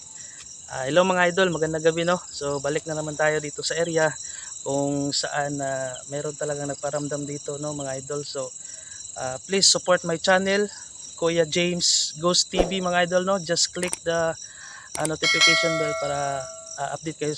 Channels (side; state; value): both; identical; correlation 1.00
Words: Hello mga idol, magandang gabi no. So balik na naman tayo dito sa area kung saan meron talagang nagparamdam dito no mga idol. So please support my channel, Kuya James Ghost TV mga idol no. Just click the notification bell para update kayo